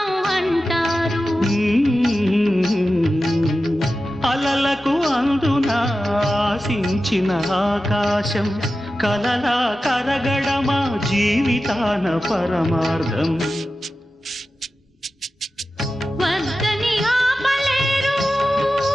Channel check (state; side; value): normal; both; correlation 0.93